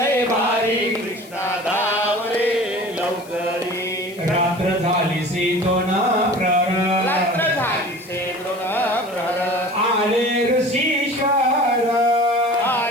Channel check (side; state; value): left; noise; hiss, 22 dB below the sound